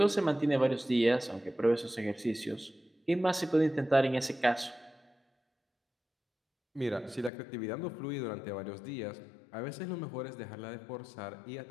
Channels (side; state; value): right; drops out; at 7.3 s